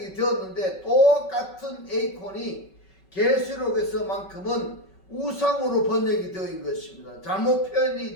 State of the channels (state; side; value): late; right; 5.3 ms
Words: 되었는데 똑같은 에이콘이 계시록에서만큼은 우상으로 번역이 되어있는 것입니다. 잘못 표현이